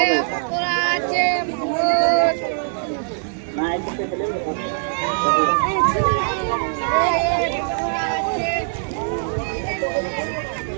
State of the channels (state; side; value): silent; left; 61 dB below the other